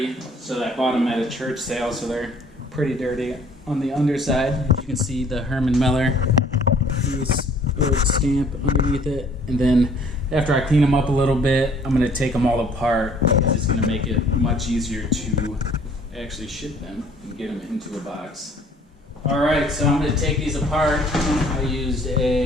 so I bought them at a church sale, so they're pretty dirty on the underside. You can see the Herman Miller stamp underneath it. And then after I clean them up a little bit, I'm gonna take them all apart. It's gonna make it much easier to actually ship them and get them into a box. Alright, so I'm going to take these apart. I used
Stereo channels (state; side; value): normal; both; correlation 0.57